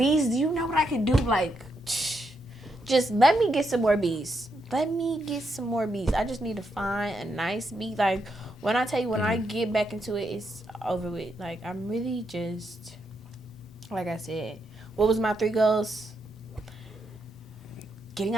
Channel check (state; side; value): normal; both; correlation 0.81